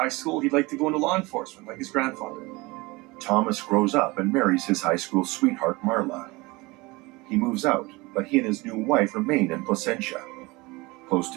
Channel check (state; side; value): quieter; left; 23.5 dB